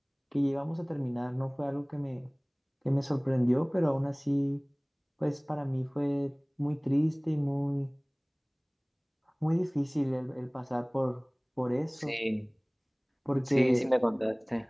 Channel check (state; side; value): identical; both; correlation 1.00